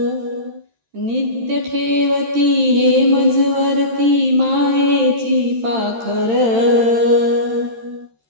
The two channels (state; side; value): late; left; 13 ms